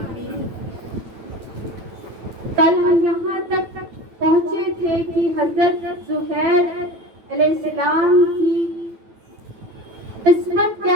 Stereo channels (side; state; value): left; late; 9.1 ms